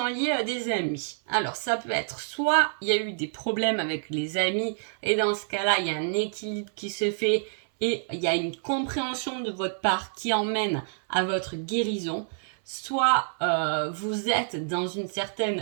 liées à des amis. Alors, ça peut être soit il y a eu des problèmes avec les amis et dans ce cas-là, il y a un équilibre qui se fait et il y a une compréhension de votre part qui emmène à votre guérison. Soit vous êtes dans une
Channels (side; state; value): left; silent; 59 dB below the other